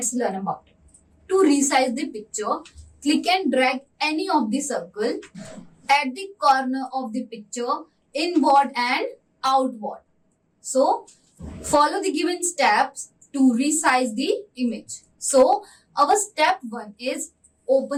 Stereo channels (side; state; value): both; identical; correlation 1.00